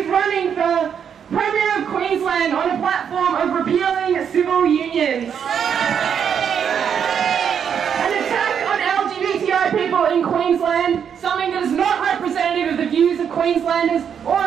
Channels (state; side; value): quieter; left; 7.8 dB